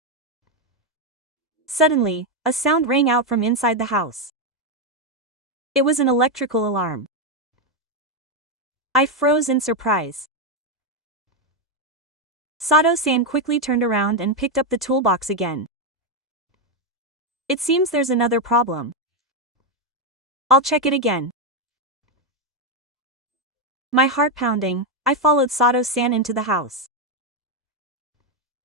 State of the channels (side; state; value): both; normal; correlation 0.04